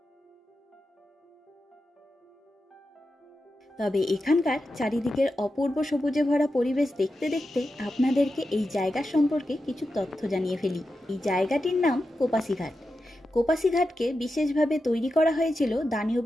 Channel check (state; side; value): normal; both; correlation 0.90